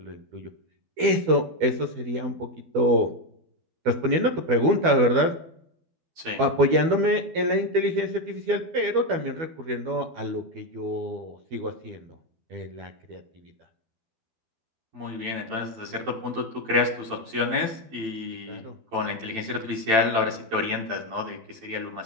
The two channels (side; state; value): left; late; 12 ms